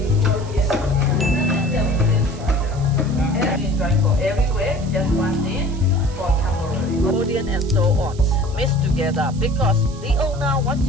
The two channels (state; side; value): noise; right; hiss, 21 dB below the sound